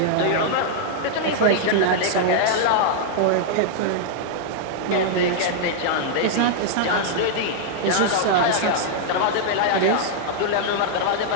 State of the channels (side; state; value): both; different; correlation -0.01